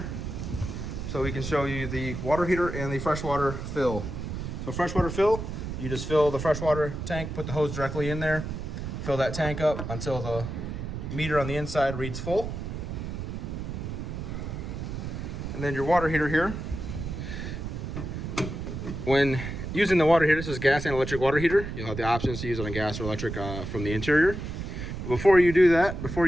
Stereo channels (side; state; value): right; noise; rumble, 6 dB below the sound